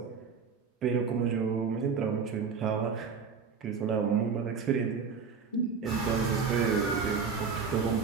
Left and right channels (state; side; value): quieter; left; 5.7 dB